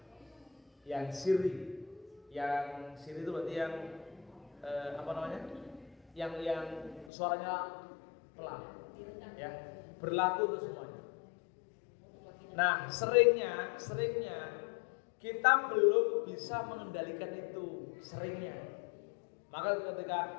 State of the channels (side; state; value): right; drops out; at 7.1 s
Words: yang sirri. Yang sirri itu berarti yang yang suaranya pelan, ya, berlaku untuk semuanya. Nah, seringnya kita belum bisa mengendalikan itu, seringnya. Maka ketika